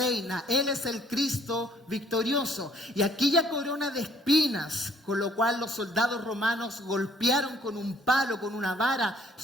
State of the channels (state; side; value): normal; both; correlation 0.61